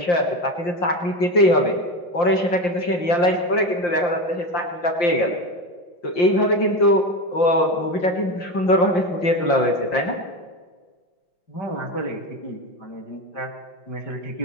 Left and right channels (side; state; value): right; late; 5.7 ms